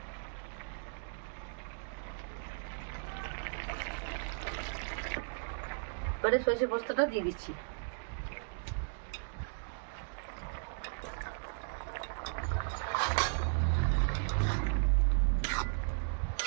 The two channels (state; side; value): silent; left; digital silence